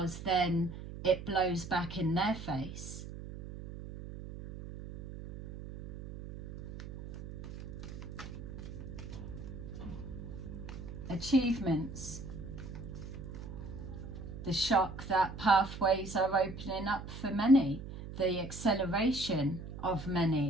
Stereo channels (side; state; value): right; noise; hum, 10 dB below the sound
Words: then it blows back in their face. Achievements. The shock that pathways are opening up for many. The acceleration of